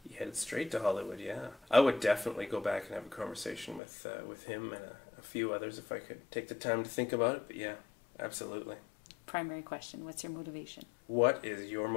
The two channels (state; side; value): drops out; right; at 3.8 s